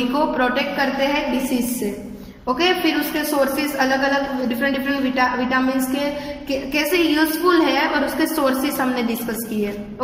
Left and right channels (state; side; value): identical; both; correlation 1.00